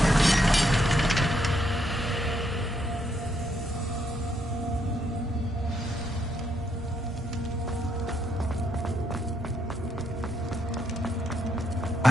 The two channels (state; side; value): normal; both; correlation 0.76